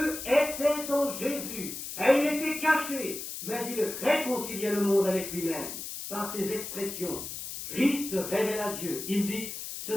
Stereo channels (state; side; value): noise; left; hiss, 8 dB below the sound